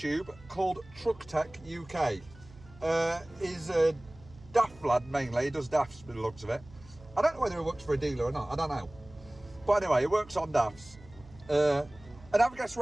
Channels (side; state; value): right; noise; hum, 22 dB below the sound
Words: called Truck Tech UK. He's a daft lad mainly. He does dafts by the looks of it. I don't know whether he works for a dealer or not. I don't know. But anyway, he works on dafts. And have a guess